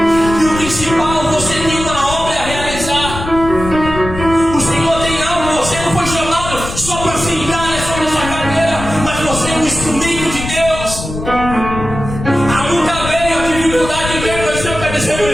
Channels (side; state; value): left; noise; rumble, 8 dB below the sound